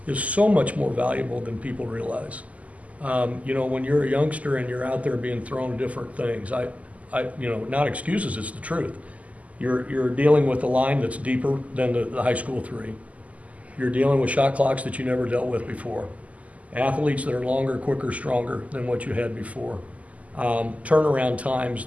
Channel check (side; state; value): left; late; 0.071 ms